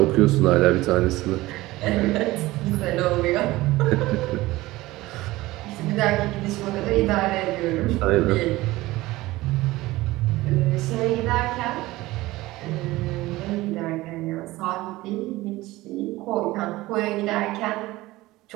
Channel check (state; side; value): quieter; left; 18.6 dB